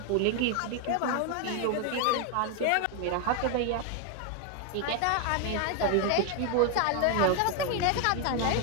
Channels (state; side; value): different; both; correlation 0.01